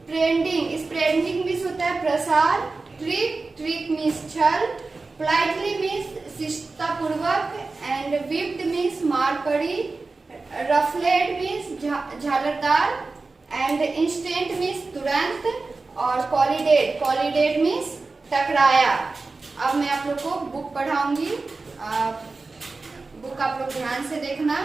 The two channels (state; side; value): quieter; left; 3.7 dB